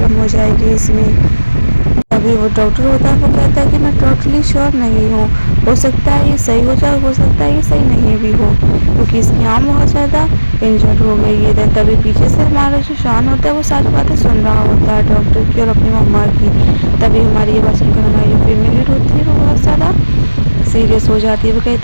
हो जाएगी इसमें। अभी वो डॉक्टर होता है वो कहता है कि मैं टोटली श्योर नहीं हूँ, हो सकता है ये सही हो जाए, हो सकता है ये सही नहीं भी हो, क्योंकि इसकी आँख बहुत ज़्यादा इंजर्ड हो गई है। तभी पीछे से हमारा जो शान होता है वो सारी बातें सुन रहा होता है डॉक्टर की और अपनी मम्मा की। तभी हमारी ये बात सुनकर हमारी जो फीमेल लीड होती है वो बहुत ज़्यादा सीरियस हो जाती है, वो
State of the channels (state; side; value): inverted; both; correlation -1.00